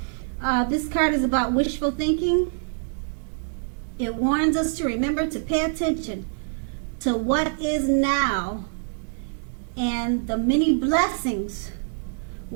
This card is about wishful thinking. It warns us to remember to pay attention to what is now and the many blessings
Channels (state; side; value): silent; left; digital silence